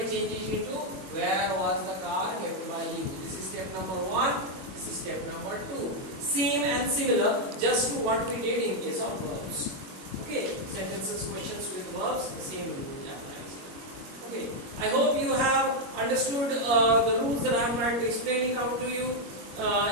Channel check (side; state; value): left; late; 21 ms